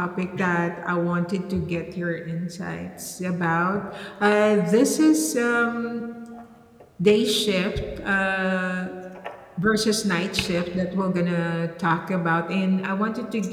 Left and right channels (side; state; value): both; identical; correlation 1.00